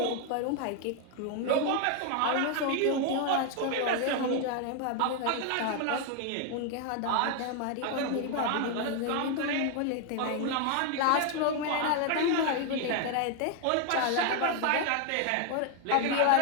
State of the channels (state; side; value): different; both; correlation 0.00